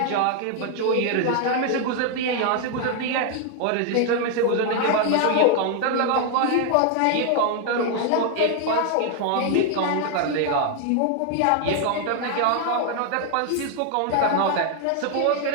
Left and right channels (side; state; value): both; different; correlation 0.00